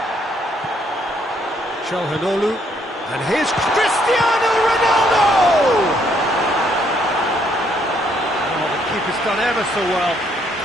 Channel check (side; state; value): both; normal; correlation 0.69